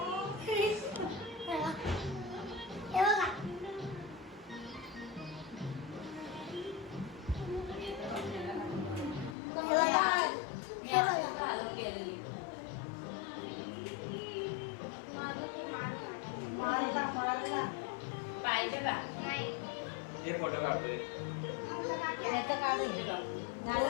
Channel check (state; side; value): drops out; right; at 9.3 s